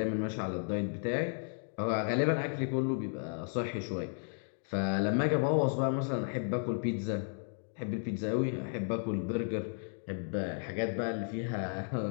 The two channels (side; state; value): right; silent; 55 dB below the other